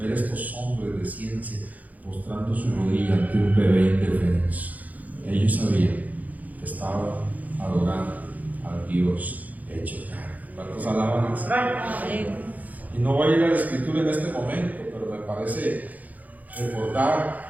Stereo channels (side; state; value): left; late; 0.078 ms